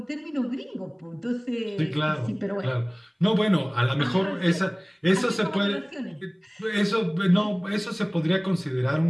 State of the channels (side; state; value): both; identical; correlation 1.00